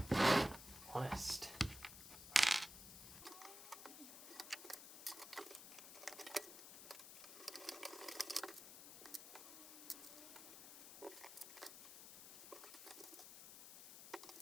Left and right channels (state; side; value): noise; left; hiss, 12 dB below the sound